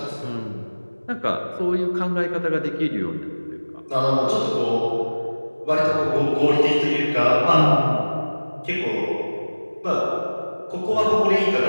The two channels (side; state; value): both; inverted; correlation -1.00